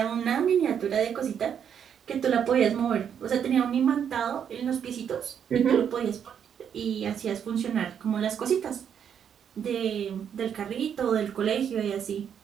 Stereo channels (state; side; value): quieter; left; 8.3 dB